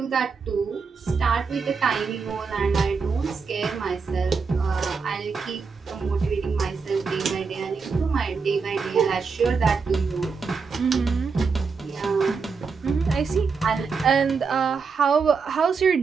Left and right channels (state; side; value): quieter; left; 5.1 dB